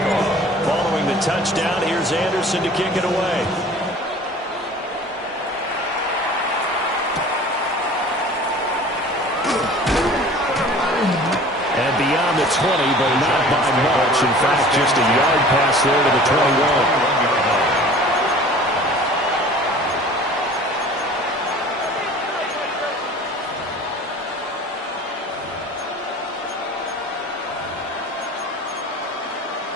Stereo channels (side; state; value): both; normal; correlation 0.45